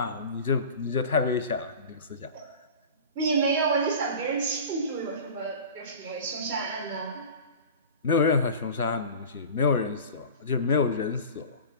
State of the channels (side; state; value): both; inverted; correlation -0.36